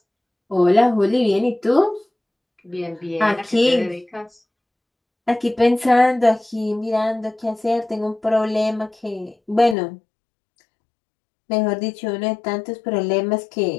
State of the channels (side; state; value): right; drops out; at 9.8 s